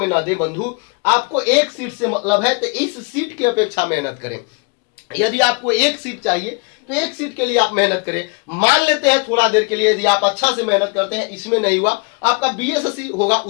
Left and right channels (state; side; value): quieter; right; 32.5 dB